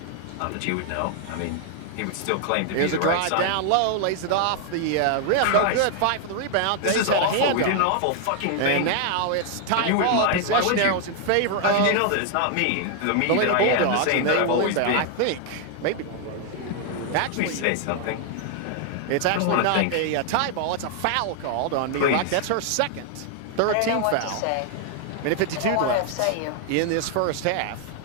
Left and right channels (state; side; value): different; both; correlation 0.00